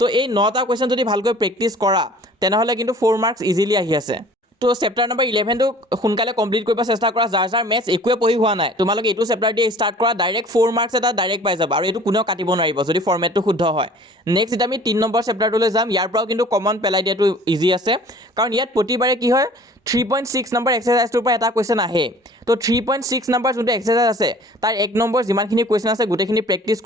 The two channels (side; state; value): both; normal; correlation 0.49